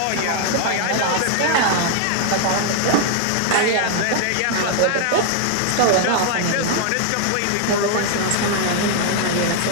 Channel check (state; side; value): different; both; correlation 0.00